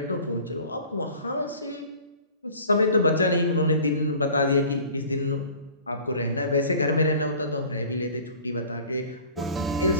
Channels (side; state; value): both; inverted; correlation -0.47